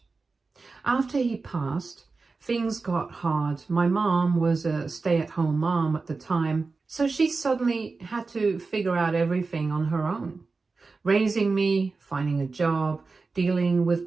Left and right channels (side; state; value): left; quieter; 4.1 dB